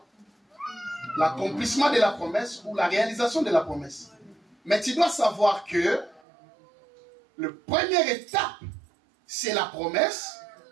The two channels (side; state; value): left; drops out; at 6.2 s